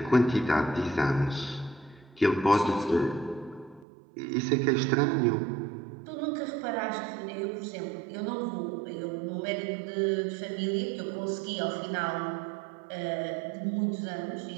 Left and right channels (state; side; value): drops out; left; at 3.9 s